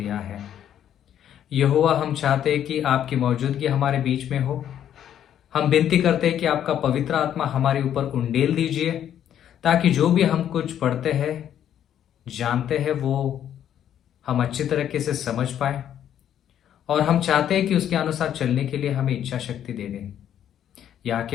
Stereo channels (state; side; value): quieter; right; 10.2 dB